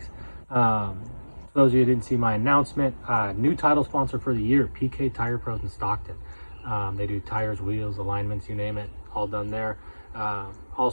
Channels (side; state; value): both; inverted; correlation -1.00